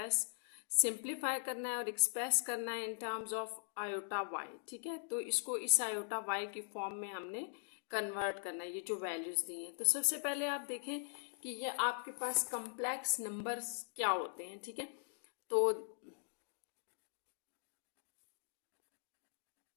सिंप्लीफाई करना है और एक्सप्रेस करना है in terms of iota Y. ठीक है, तो इसको इस आयोटा वाई की फॉर्म में हमने कन्वर्ट करना है, ये जो वैल्यूज दी हैं। तो सबसे पहले आप देखें कि ये आपके पास कम्प्लेक्स नंबर्स क्या होते हैं। ठीक है, तो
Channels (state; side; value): silent; right; digital silence